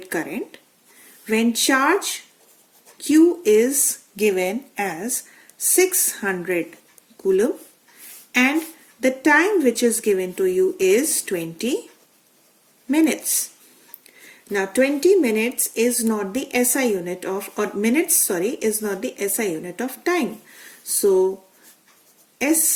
current when charge Q is given as 600 coulomb and the time which is given to you is 20 minutes. Now 20 minutes is not the SI unit of, is not the SI unit of time. So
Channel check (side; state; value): both; identical; correlation 1.00